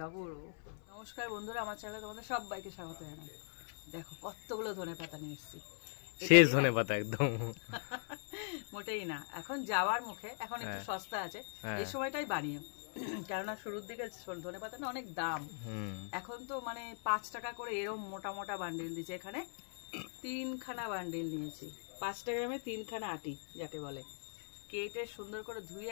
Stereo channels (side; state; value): right; silent; 51 dB below the other